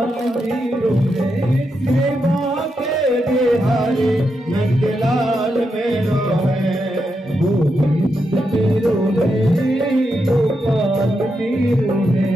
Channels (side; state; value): both; normal; correlation 0.84